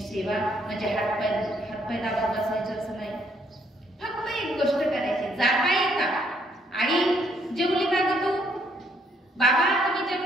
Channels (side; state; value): both; normal; correlation 0.70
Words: म्हणजे हातपाय दाबून बसायचं असं नाही. फक्त एक गोष्ट करायची, जाता येता आई जेवली का ग तू, बाबा तुम्ही